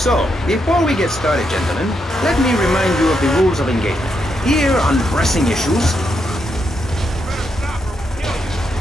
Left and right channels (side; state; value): both; normal; correlation 0.81